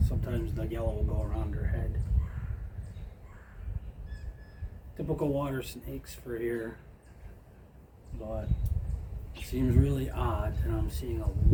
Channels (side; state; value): both; identical; correlation 1.00